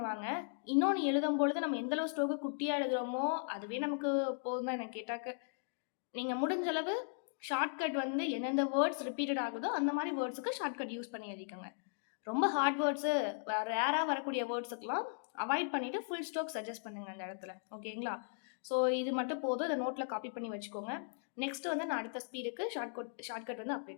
இன்னொன்று எழுதும்பொழுது நம்ம எந்தளவு ஸ்டோக்கு குட்டியாக எழுதுகிறோமோ அதுவே நமக்கு போதும் தான் எனக்கு கேட்டாக்க. நீங்கள் முடிஞ்சளவு ஷார்ட்கட் வந்து எந்தெந்த வேர்ட்ஸ் ரிப்பீட்டட் ஆகுதோ அந்த மாதிரி வேர்ட்ஸுக்கு ஷார்ட்கட் யூஸ் பண்ணி எழுதிக்கோங்க. ரொம்ப ஹார்ட் வேர்ட்ஸு ரேராக வரக்கூடிய வேர்ட்ஸுக்கெலாம் அவாய்ட் பண்ணிவிட்டு ஃபுல் ஸ்டோக் சஜஸ்ட் பண்ணுங்கள் அந்த இடத்துல. ஓகேங்களா? ஸோ இது மட்டும் போதும். இதை நோட்டில் காப்பி பண்ணி வச்சுக்கோங்க. நெக்ஸ்ட்டு வந்து நான் அடுத்த ஸ்பீடுக்கு ஷார்ட்கட் வந்து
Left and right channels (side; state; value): right; silent; digital silence